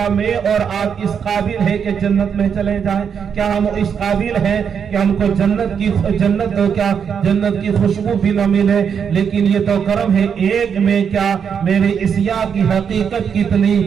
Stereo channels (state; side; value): quieter; left; 7.2 dB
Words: میں اور آپ اس قابل ہے کہ جنت میں چلے جائیں؟ کیا ہم اس قابل ہیں کہ ہم کو جنت کی خوشبو بھی نہ ملے؟ لیکن یہ تو کرم ہے، ایک میں کیا میرے عصیاء کی حقیقت کتنی،